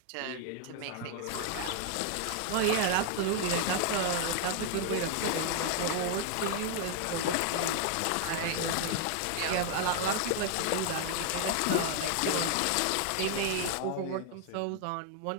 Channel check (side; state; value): both; different; correlation 0.00